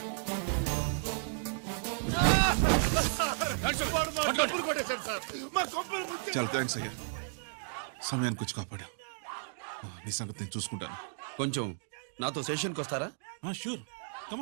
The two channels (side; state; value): left; silent; digital silence